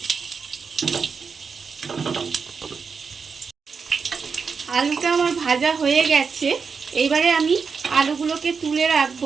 আলুটা আমার ভাজা হয়ে গেছে। এইবারে আমি আলুগুলোকে তুলে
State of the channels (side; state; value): left; quieter; 5.5 dB